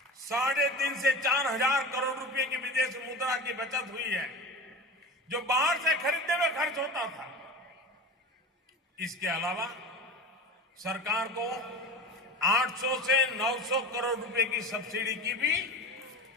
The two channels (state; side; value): normal; both; correlation 0.30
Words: 3.5 से 4 हजार करोड़ रुपए की विदेश मुद्रा की बचत हुई है, जो बाहर से खरीदने में खर्च होता था। इसके अलावा सरकार को 800 से 900 करोड़ रुपए की सब्सिडी की भी